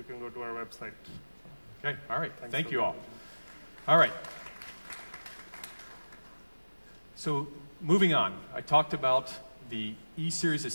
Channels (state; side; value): inverted; both; correlation -1.00